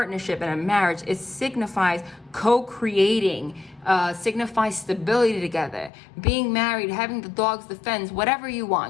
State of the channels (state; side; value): drops out; right; at 5.9 s